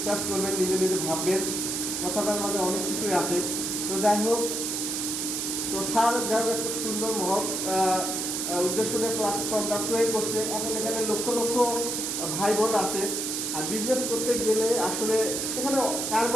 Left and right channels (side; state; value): right; noise; hiss, 2 dB below the sound